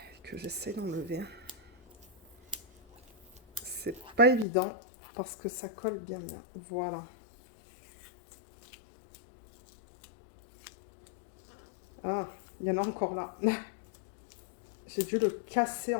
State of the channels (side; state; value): right; drops out; at 4.5 s